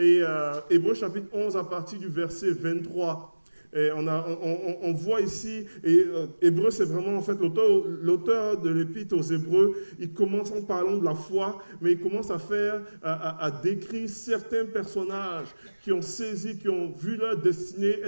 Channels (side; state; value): both; inverted; correlation -1.00